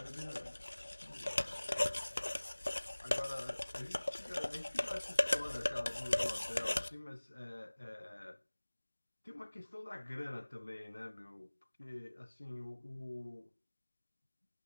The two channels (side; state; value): both; inverted; correlation -1.00